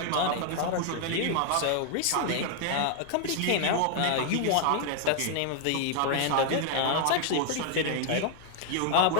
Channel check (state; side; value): different; both; correlation 0.00